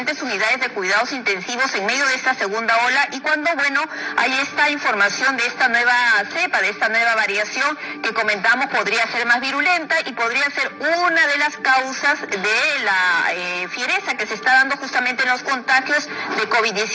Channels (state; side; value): identical; both; correlation 1.00